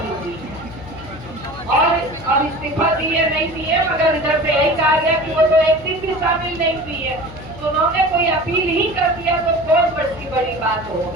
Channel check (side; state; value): left; noise; hum, 16 dB below the sound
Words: हुई और इस्तीफा दिए नहीं दिए, मगर इधर से यही कहा गया कि वो तो एक दिन भी शामिल नहीं हुई है। तो उन्होंने कोई अपील ही कर दिया तो बहुत बड़ी बात हो